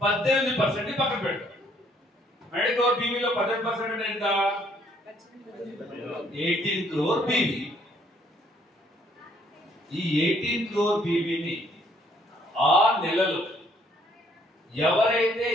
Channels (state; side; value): normal; both; correlation 0.65